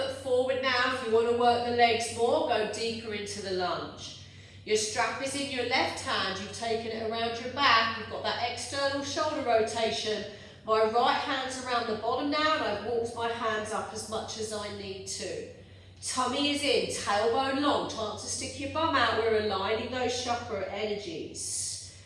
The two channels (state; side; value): identical; both; correlation 1.00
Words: forward now. If you want to work the legs more, go deeper into the lunge. Your strap is in your left hand. You've taken it around your back. You've got that external shoulder rotation. My right hand's around the bottom now, and I've walked my hands up as much as I need to. Tummy is in, tailbone long. Chance to stick your bum out. We're aligning those chakra energies.